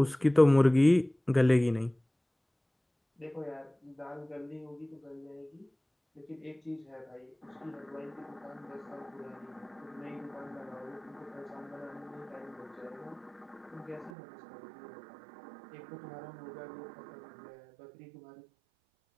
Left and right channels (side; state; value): left; drops out; at 14.1 s